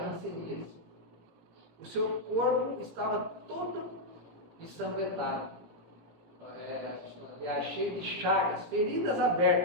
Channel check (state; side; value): late; left; 18 ms